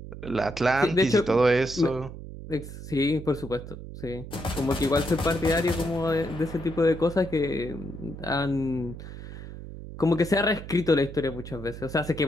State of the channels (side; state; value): right; noise; hum, 12 dB below the sound